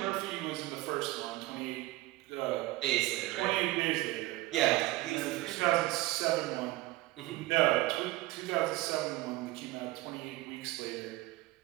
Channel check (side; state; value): left; quieter; 18.7 dB